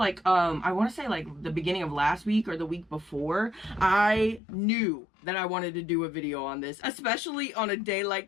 I want to say like the beginning of last week or the week before. I knew that I wanted to do a video on this, especially on a day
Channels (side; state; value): right; drops out; at 4.4 s